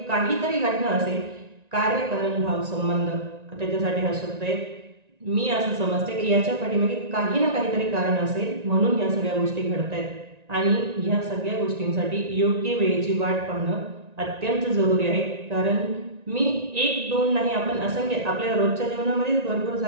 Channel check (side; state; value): left; late; 1.9 ms